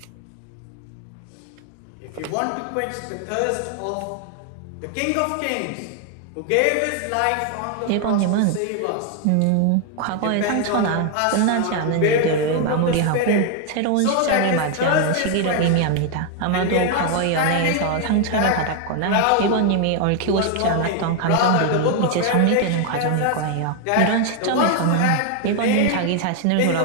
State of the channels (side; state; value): both; different; correlation 0.00